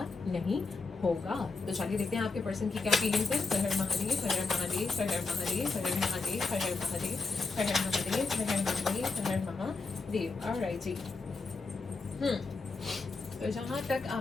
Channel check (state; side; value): quieter; right; 4.1 dB